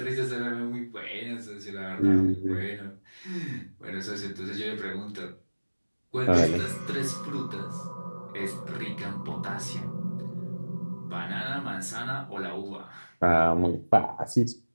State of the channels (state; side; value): inverted; both; correlation -1.00